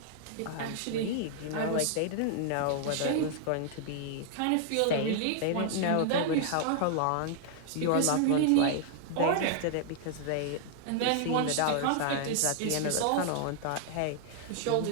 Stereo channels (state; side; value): different; both; correlation 0.00